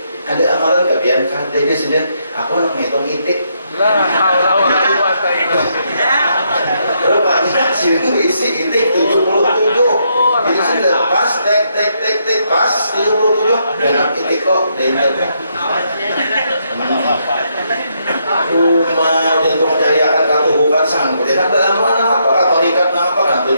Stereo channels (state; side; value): inverted; both; correlation -0.76